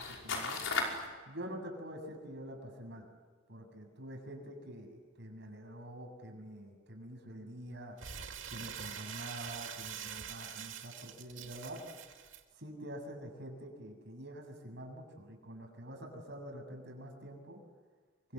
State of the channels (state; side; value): normal; both; correlation 0.18